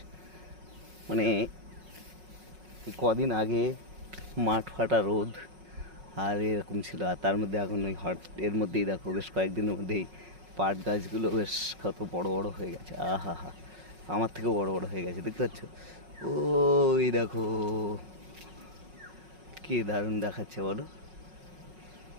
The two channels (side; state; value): left; late; 5.4 ms